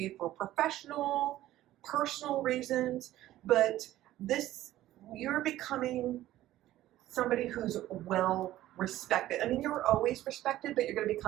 for professional, personal reasons, but you're becoming somebody who's well respected. I mean, you're always respected, but you're going to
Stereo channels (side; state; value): left; quieter; 14.5 dB